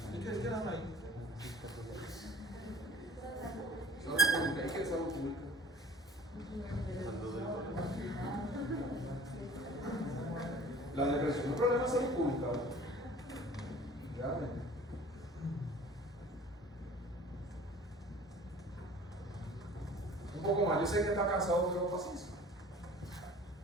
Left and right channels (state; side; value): normal; both; correlation 0.48